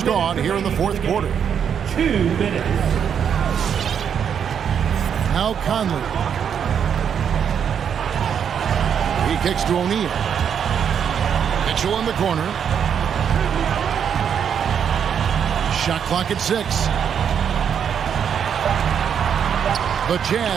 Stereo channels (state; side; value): quieter; left; 7.9 dB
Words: gone here in the fourth quarter. 2 minutes. Now Conley. He kicks to O'Neal. Mitchell in the corner. Shot clock at 6. The